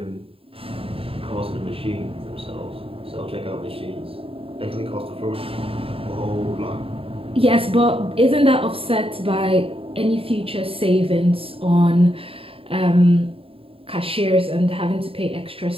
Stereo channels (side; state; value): left; late; 0.27 ms